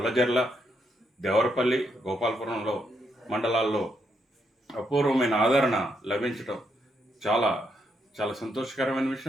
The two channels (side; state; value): both; normal; correlation 0.78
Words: దేవరపల్లి, గోపాలపురంలో మండలాల్లో అపూర్వమైన ఆదరణ లభించటం చాలా చాలా సంతోషకరమైన